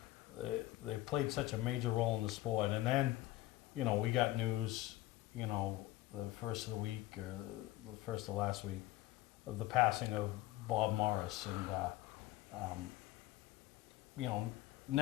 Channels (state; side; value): quieter; right; 16.9 dB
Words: they played such a major role in the sport. And then, you know, we got news, you know, the first of the week, or the first of last week, of the passing of Bob Morris. And, you know,